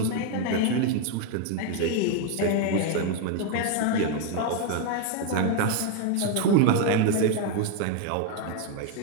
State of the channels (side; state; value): both; different; correlation 0.01